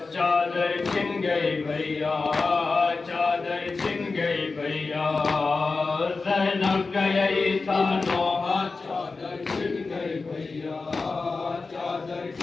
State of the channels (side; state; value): right; quieter; 4.1 dB